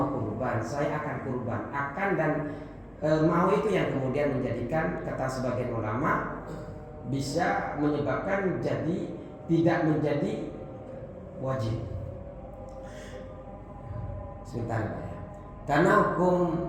kurban, saya akan kurban. Akan dan mau itu yang kemudian menjadikan kata sebagian ulama bisa menyebabkan jadi tidak menjadi wajib. Sebentar Pak ya.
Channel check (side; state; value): both; identical; correlation 1.00